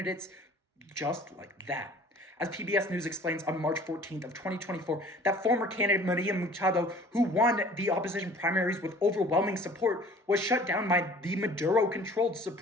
just like that. As PBS News explains on March 14th of 2024, that former candidate Maria Machado, who won the opposition primaries with overwhelming support, was shut down by the Maduro-controlled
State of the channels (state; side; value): normal; both; correlation 0.49